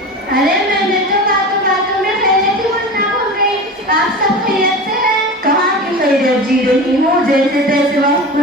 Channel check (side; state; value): both; normal; correlation 0.30